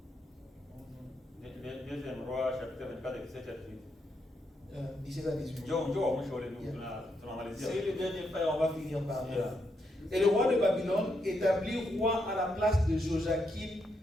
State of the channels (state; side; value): normal; both; correlation 0.80